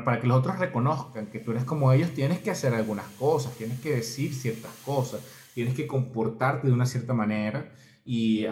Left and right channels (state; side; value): identical; both; correlation 1.00